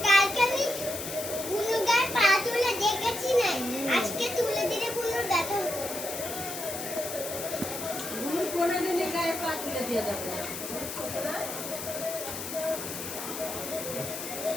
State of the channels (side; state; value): left; noise; hiss, 7 dB below the sound